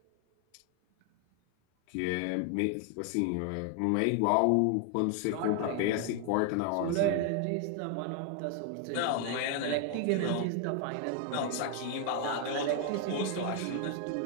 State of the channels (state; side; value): different; both; correlation 0.00